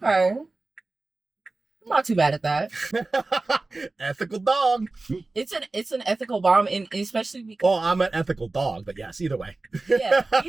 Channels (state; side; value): quieter; left; 3.3 dB